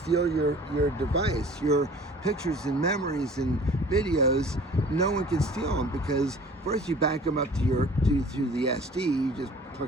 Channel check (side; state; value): both; normal; correlation 0.47